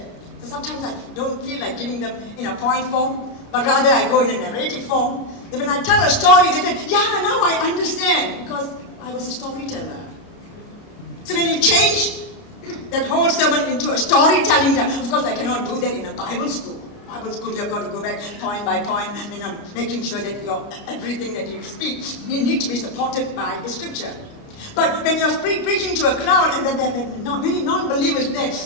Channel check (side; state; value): right; late; 29 ms